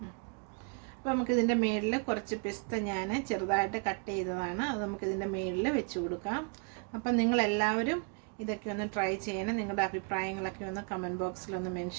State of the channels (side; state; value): left; quieter; 36.4 dB